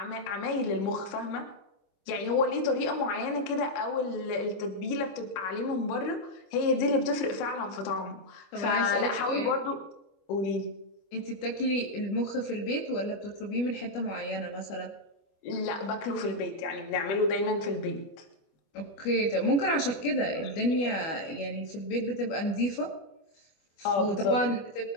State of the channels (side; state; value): right; late; 25 ms